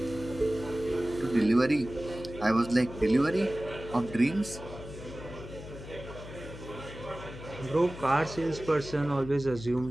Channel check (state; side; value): noise; left; hum, 13 dB below the sound